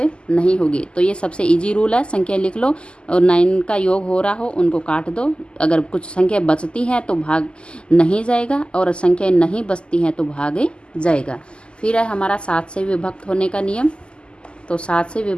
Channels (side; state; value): right; late; 0.050 ms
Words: नहीं होगी। तो ये सबसे इजी रूल है, संख्या लिख लो और 9 का योग हो रहा हो उनको काट दो। अगर कुछ संख्या बचती हैं तो भाग नहीं जाएगा, और संख्या नहीं बचती हैं तो भाग जाएगा। फिर है हमारा 7 से विभक्त होने का नियम। तो 7 से